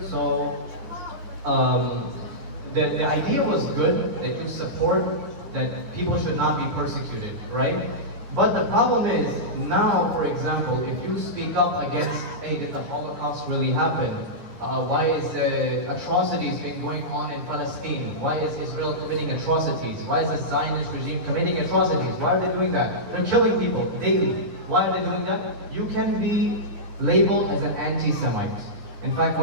So, the idea was good, that you support that people should not be persecuted, right? But the problem is, now, for example, if you speak up against, hey, did the Holocaust really happen? Why is atrocities been going on in Palestine? Why is Israel committing atrocities? Why is the Zionist regime committing atrocities? Why are they doing that? They're killing people daily. Why are they doing that? You can be labeled as an anti-Semite. In fact,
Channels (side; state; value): left; late; 9.7 ms